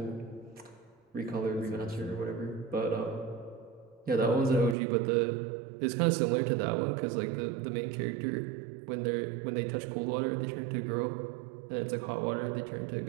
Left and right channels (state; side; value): drops out; left; at 4.8 s